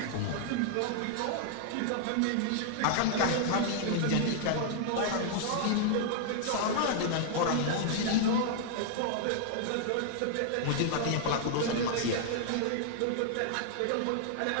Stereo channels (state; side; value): different; both; correlation -0.01